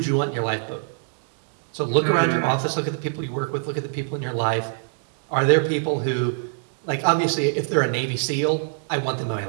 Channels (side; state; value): left; silent; digital silence